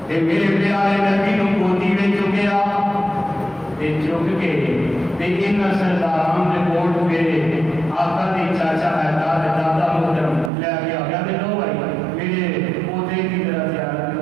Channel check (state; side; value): drops out; left; at 10.5 s